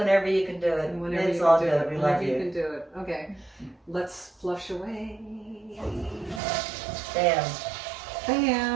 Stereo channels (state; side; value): drops out; left; at 6.4 s